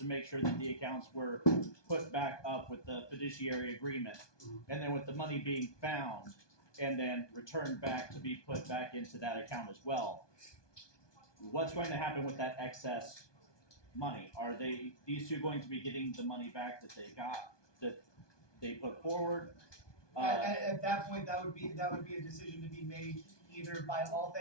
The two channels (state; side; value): late; right; 1.2 ms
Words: make sure that the accounts were put back up with the fiduciary agreement, and then with the money being found and then returned back to be put back into that account as well, what's going to happen with that excess money? Are these two going to be getting the money back that they put forward? At that point, that would be a decision to be made either by